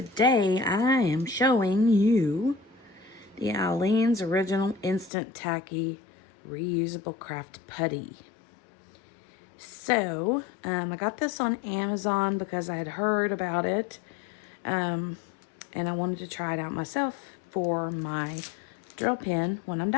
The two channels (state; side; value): drops out; right; at 5.1 s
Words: I am showing you the Aleene's Original Instant Tacky Reusable Craft Putty. So, I got this on Amazon because I had heard about it, and I wanted to try it out myself for my drill pen when I'm